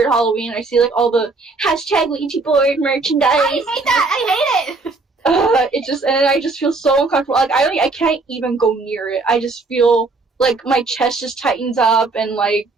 Halloween. I see like all the hashtag Ouija board merchandise. I hate that. I hate it. And I just feel so uncomfortable. Like I can't even go near it. I just feel like my chest just tightens up and like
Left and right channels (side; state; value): left; quieter; 3.7 dB